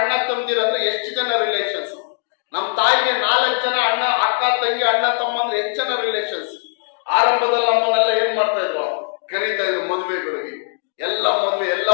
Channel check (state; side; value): silent; right; digital silence